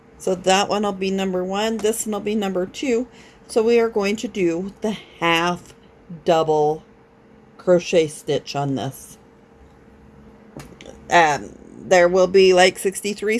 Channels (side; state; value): both; identical; correlation 1.00